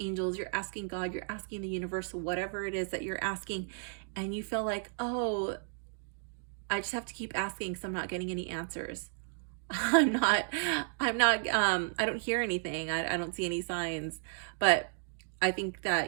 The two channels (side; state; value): left; silent; digital silence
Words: angels, you're asking God, you're asking the universe, whatever it is that you're asking. And you feel like, oh, I just have to keep asking because I'm not getting any answers. I don't hear anything. I don't see any signs. But I think